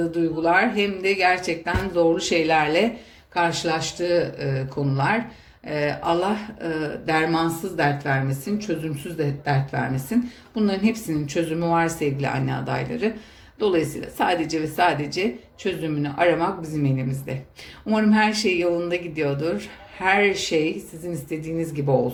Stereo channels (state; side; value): identical; both; correlation 1.00